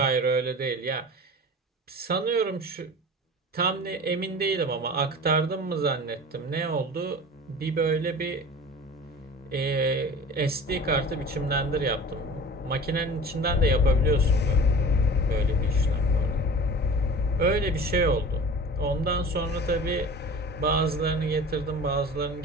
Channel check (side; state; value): both; normal; correlation 0.39